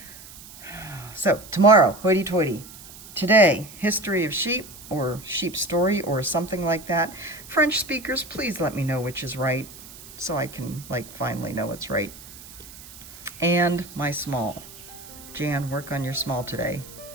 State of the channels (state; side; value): noise; right; hiss, 17 dB below the sound